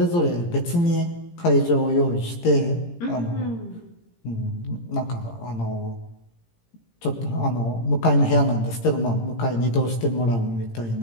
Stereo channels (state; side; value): late; right; 17 ms